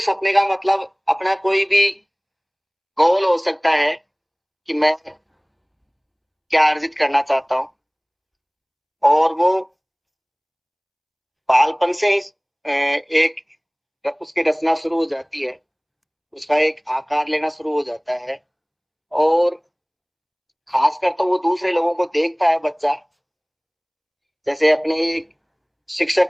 सपने का मतलब अपना कोई भी गोल हो सकता है कि मैं क्या अर्जित करना चाहता हूँ, और वो बालपन से ही एक उसकी रचना शुरू हो जाती है, उसका एक आकार लेना शुरू हो जाता है। और खासकर तो वो दूसरे लोगों को देखता है बच्चा, जैसे अपने एक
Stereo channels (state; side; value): identical; both; correlation 1.00